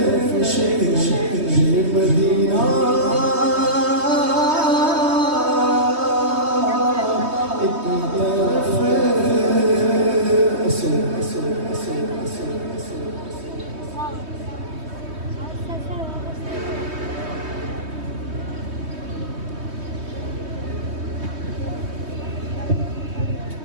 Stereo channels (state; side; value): late; left; 3.2 ms